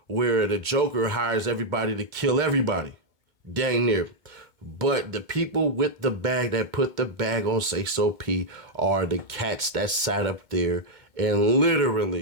where the Joker hires everybody to kill everybody. Dang near. But the people with the bag that put the bag on Sayso P are the cats that sat up there and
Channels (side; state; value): left; late; 2.1 ms